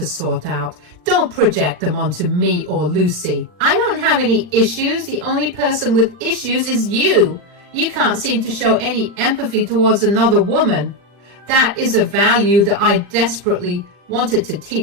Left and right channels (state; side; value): late; left; 40 ms